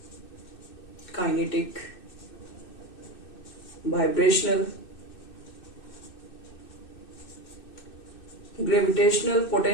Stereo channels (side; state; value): right; late; 2.6 ms